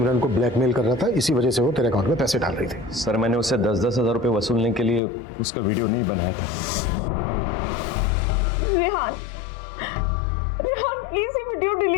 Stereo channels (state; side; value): drops out; right; at 5.0 s